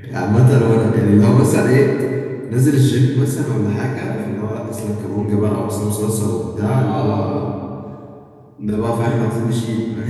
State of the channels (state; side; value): identical; both; correlation 1.00